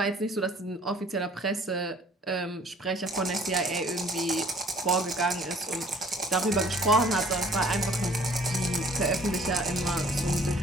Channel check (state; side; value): normal; both; correlation 0.55